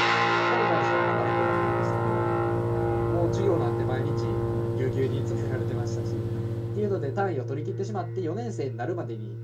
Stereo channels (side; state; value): both; identical; correlation 1.00